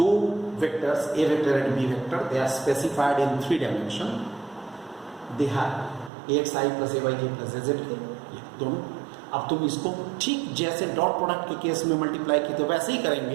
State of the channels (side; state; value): left; drops out; at 6.1 s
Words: vectors a vector and b vector, they are specified in 3 dimension, they have axi plus ayj plus azk, ये दोनों। अब तुम इसको ठीक जैसे डॉट प्रोडक्ट के केस में मल्टीप्लाई किए थे वैसे ही